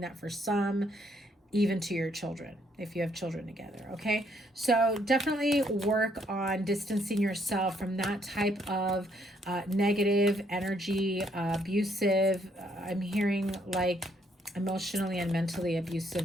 that for some, even to your children, if you have children together, okay? So definitely work on distancing yourself from that type of negative energy, abusive, I'm hearing like emotionally and mentally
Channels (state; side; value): normal; both; correlation 0.70